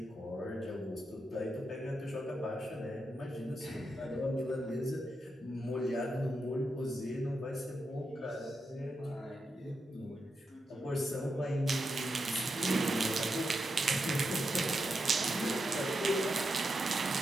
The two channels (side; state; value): both; normal; correlation 0.86